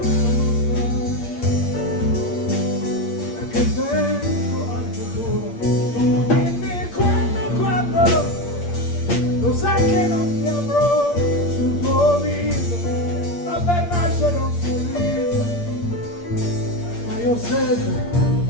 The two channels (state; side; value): late; right; 8.6 ms